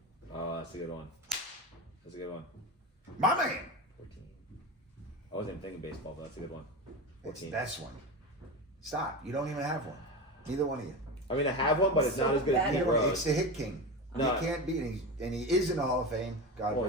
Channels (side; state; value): both; normal; correlation 0.23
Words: Oh, that's a good one. That's a good one. My man. 14. I wasn't even thinking baseball, but that's a good one. It's 14. this one. Stop. You don't even have one. Neither one of you. I mean, I have one, but it's So not as good as bad Pete at It's Rose. the hit king. No. You can't beat him. And he is in the Hall of Fame. God Well,